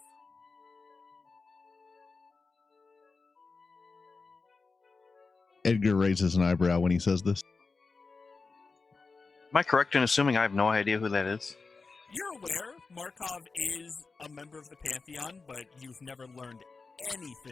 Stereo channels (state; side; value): quieter; right; 4.2 dB